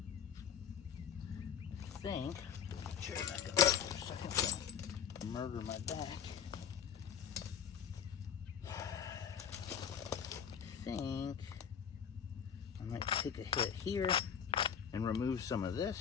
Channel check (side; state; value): right; quieter; 7.9 dB